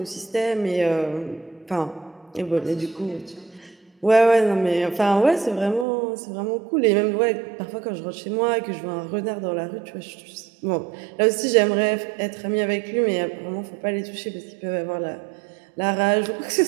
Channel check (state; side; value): drops out; left; at 5.9 s